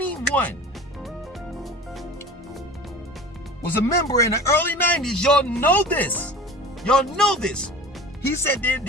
was a member in the early 90s, y'all know this. Y'all know this. He said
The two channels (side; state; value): both; normal; correlation 0.38